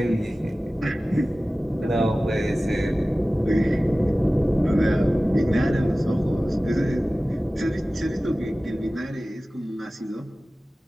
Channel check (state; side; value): normal; both; correlation 0.97